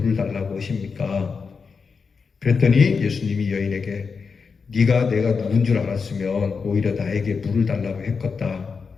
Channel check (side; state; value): right; quieter; 5.3 dB